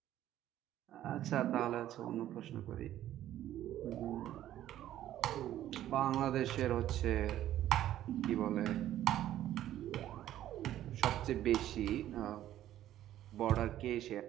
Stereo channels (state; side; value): quieter; left; 12.6 dB